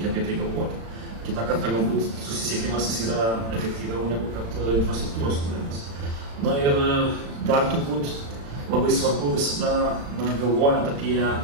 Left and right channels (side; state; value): left; late; 35 ms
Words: apie tai galvoti. Kitą kartą galbūt susisiekimas yra efektyviau negu kad infrastruktūros kūrimas. Ir dar turbūt labai svarbu visada galvojant